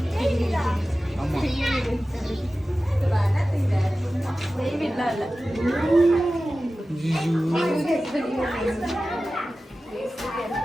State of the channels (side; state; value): both; normal; correlation 0.95